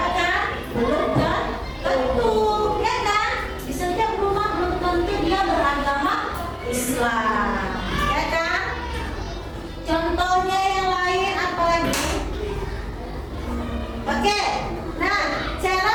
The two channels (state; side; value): identical; both; correlation 1.00